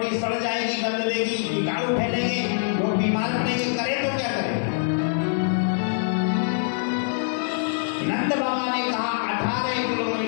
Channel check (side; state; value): right; silent; digital silence